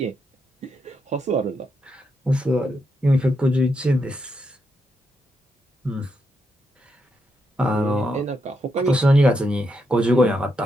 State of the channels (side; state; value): both; normal; correlation 0.82